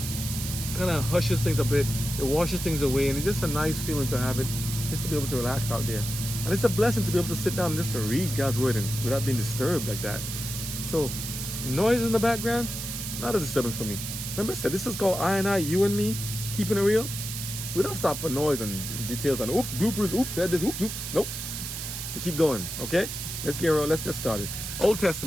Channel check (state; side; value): noise; right; hiss, 6 dB below the sound